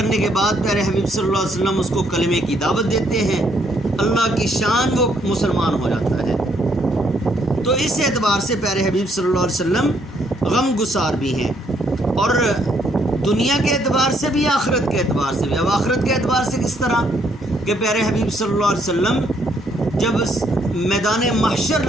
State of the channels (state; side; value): normal; both; correlation 0.70